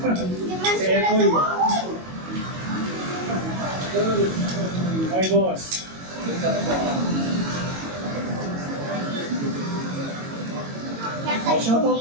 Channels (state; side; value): late; left; 22 ms